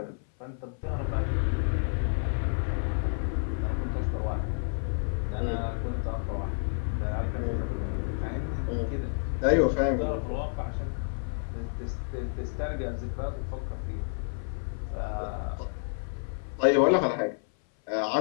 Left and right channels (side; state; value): right; silent; 58 dB below the other